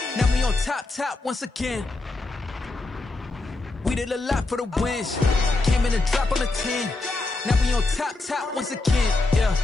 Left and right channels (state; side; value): quieter; right; 3.2 dB